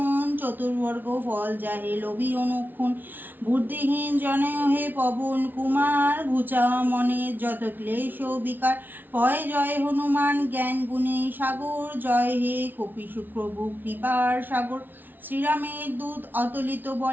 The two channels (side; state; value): left; late; 0.089 ms